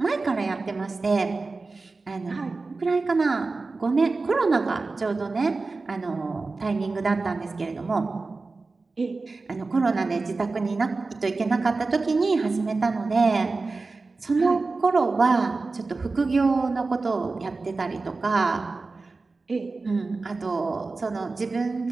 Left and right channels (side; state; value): left; quieter; 3.8 dB